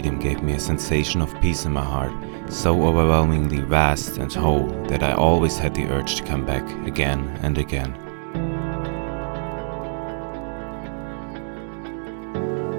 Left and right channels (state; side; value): silent; left; digital silence